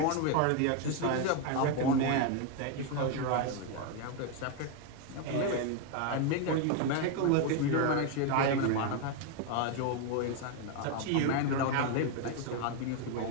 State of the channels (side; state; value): both; different; correlation 0.01